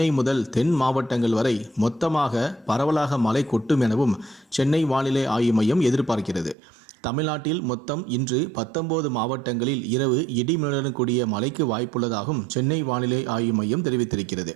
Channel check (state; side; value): drops out; left; at 6.6 s